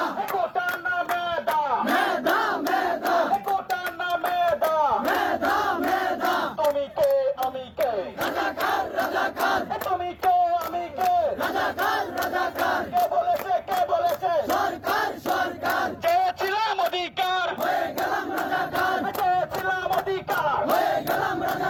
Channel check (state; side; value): identical; both; correlation 1.00